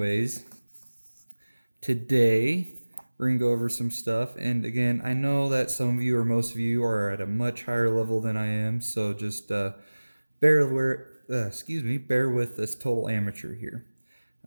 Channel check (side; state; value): both; inverted; correlation -1.00